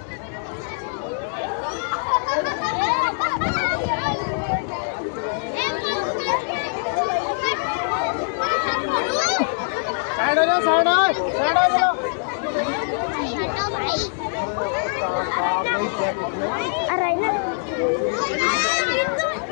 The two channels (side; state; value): right; silent; digital silence